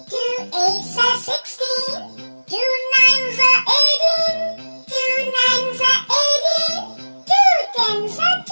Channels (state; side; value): inverted; both; correlation -1.00